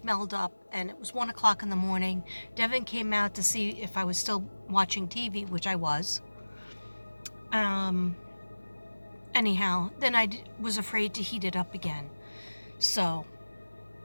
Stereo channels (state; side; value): inverted; both; correlation -1.00